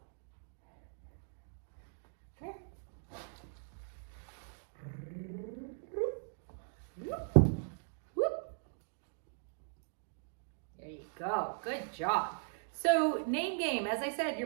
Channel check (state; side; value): silent; left; digital silence